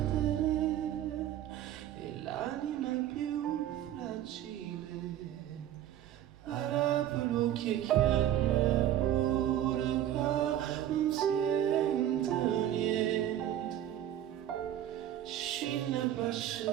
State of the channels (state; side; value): quieter; left; 11.6 dB